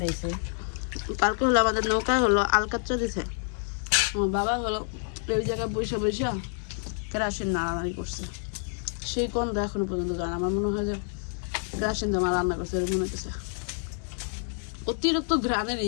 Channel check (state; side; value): silent; right; 56 dB below the other